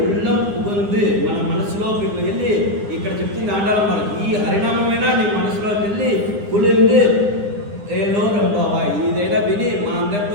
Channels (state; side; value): late; left; 9.9 ms